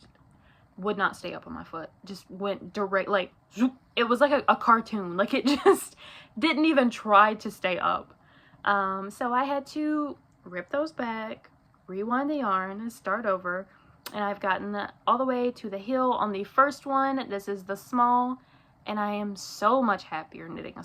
not stay up on my foot. Just went direct, like, zoop. It was like a cartoon. Like, it just didn't even try to stay up. So I had to rip those back, rewind the yarn, and start over. And I've gotten all the way to the heel on the first one. This is the small, and I am so much happier knitting a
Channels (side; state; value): both; identical; correlation 1.00